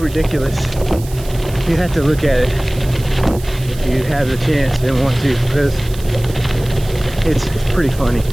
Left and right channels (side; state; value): right; noise; hiss, 17 dB below the sound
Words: You have to look at it if you have the chance and want to, because it's pretty funny.